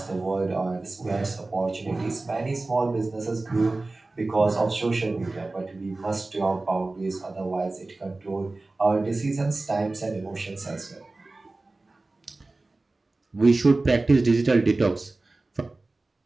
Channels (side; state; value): left; quieter; 3.2 dB